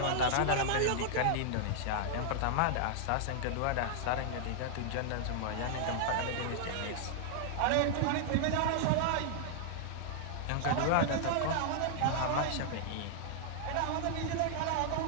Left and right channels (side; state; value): both; different; correlation -0.01